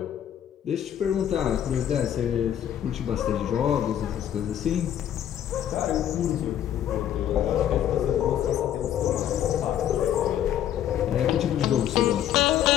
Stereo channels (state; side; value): quieter; right; 10.5 dB